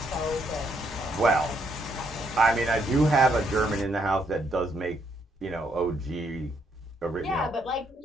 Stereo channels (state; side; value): normal; both; correlation 0.73